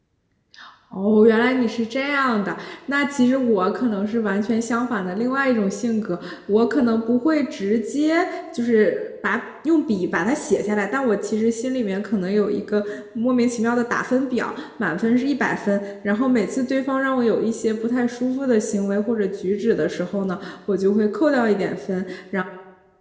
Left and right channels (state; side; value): identical; both; correlation 1.00